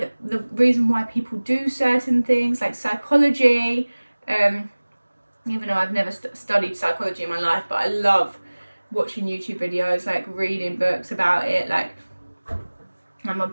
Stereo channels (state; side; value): inverted; both; correlation -1.00